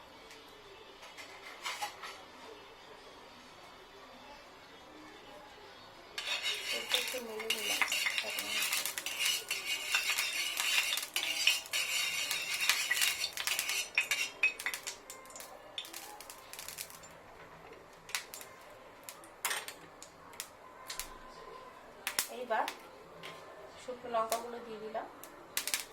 লঙ্কাগুলো দিয়ে দিলাম।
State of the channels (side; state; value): both; identical; correlation 1.00